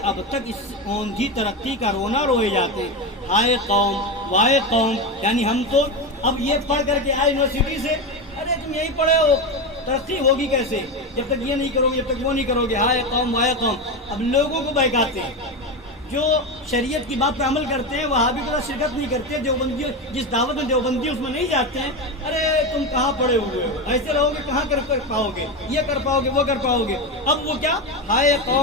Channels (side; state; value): both; normal; correlation 0.16